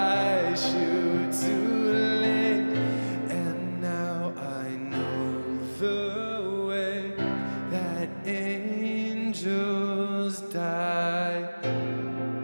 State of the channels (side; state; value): both; inverted; correlation -1.00